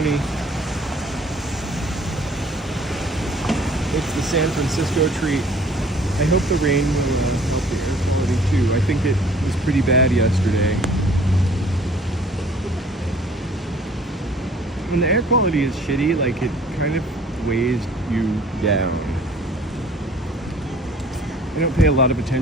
It's the San Francisco treat. I hope the rain will help the air quality too. I think it was pretty bad yesterday. When the air quality is shitty, like, it kind of weighs you down. I don't pay a lot of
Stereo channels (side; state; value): both; normal; correlation 0.53